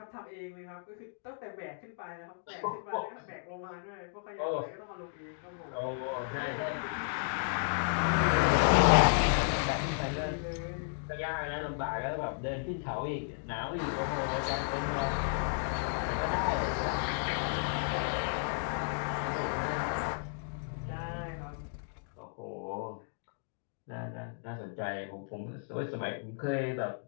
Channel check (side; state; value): right; silent; digital silence